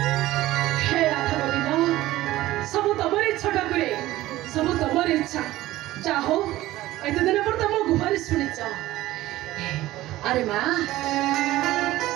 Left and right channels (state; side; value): quieter; left; 16.3 dB